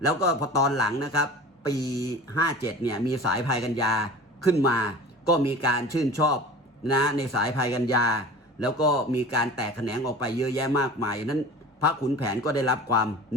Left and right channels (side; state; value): both; normal; correlation 0.39